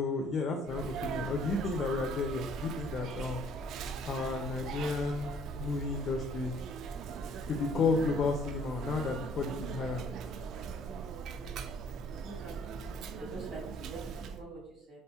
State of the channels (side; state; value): both; normal; correlation 0.59